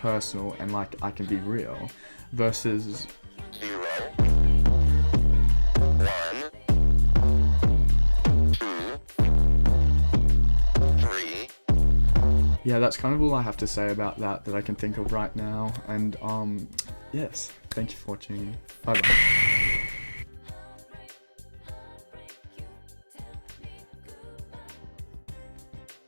and like I can be real, versus 0, 1, 2, 3. Yeah, that's kind of all I have to say about that I can think of right now, and yes, thank you for watching. Bye bye.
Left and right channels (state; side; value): inverted; both; correlation -1.00